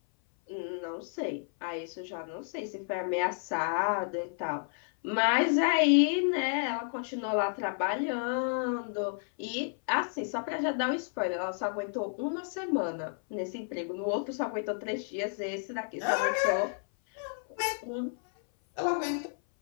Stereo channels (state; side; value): silent; right; 57 dB below the other